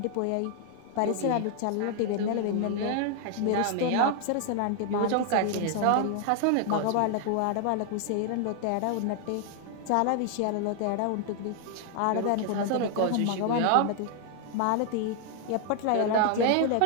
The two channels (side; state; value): both; different; correlation 0.00